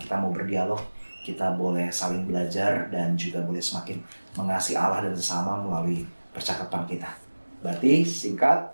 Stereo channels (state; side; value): inverted; both; correlation -1.00